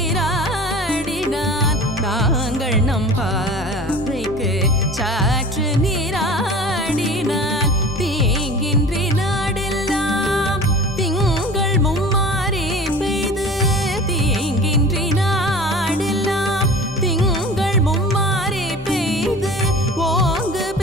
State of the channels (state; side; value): normal; both; correlation 0.39